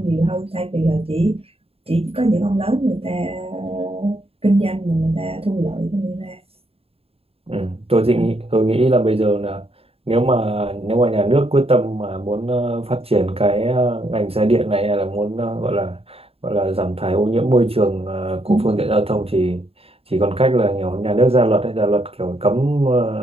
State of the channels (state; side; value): late; left; 0.28 ms